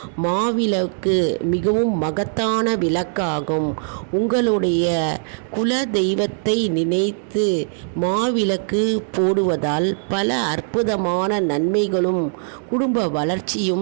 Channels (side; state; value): left; silent; digital silence